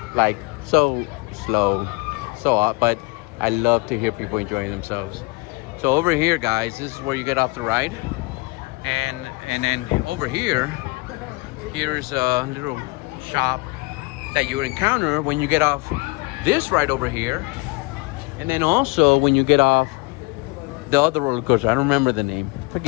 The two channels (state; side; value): quieter; right; 26.1 dB